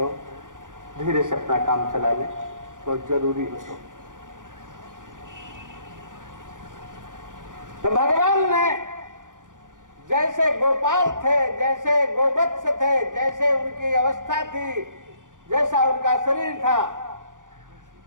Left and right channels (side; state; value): left; late; 0.88 ms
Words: धीरे से अपना काम चला लें, तो जरूरी हो। तो भगवान ने जैसे गोपाल थे, जैसे गोवत्स थे, जैसे उनकी अवस्था थी, जैसा उनका शरीर था,